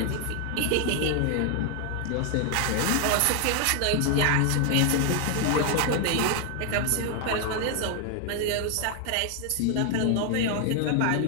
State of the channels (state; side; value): different; both; correlation 0.00